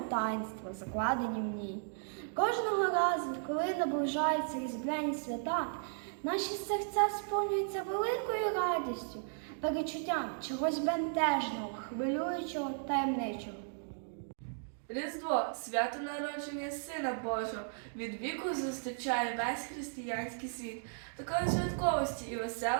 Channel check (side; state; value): left; silent; digital silence